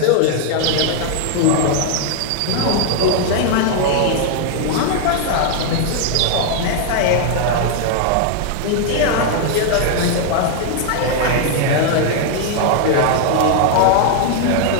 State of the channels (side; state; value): both; different; correlation 0.00